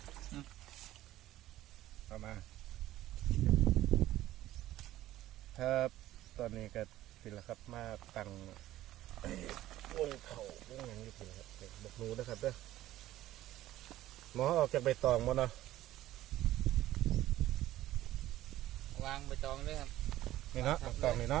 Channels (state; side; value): quieter; left; 14.7 dB